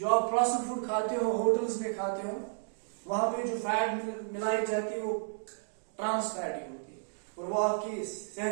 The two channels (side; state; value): left; silent; digital silence